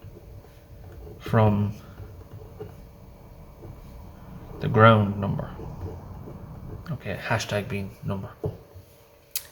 from the ground number. Okay, hashtag being number.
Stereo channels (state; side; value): identical; both; correlation 1.00